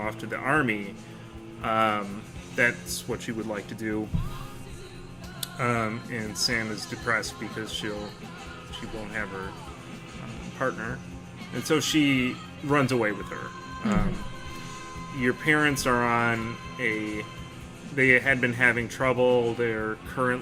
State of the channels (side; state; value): both; identical; correlation 1.00